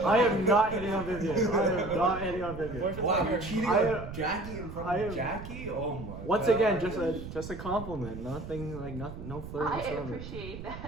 am not hitting on Vivian. I am not hitting on Vivian. Boyfriend's Wow, like you're your- cheating I- on Jacky in front I of am- Jacky? Oh my Once god. again, just a compliment. Nothing like no flirt I whatsoever. appreciate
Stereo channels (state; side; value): noise; right; rumble, 10 dB below the sound